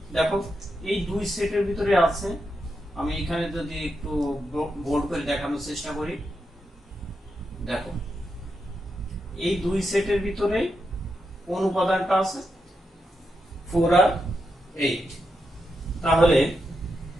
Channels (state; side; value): normal; both; correlation 0.85